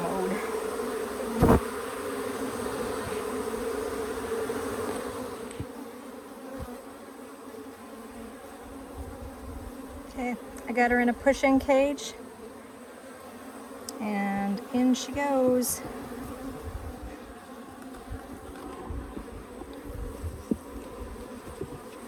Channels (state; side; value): identical; both; correlation 1.00